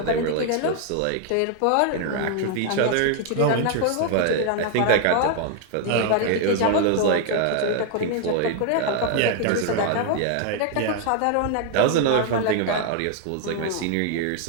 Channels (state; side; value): different; both; correlation 0.00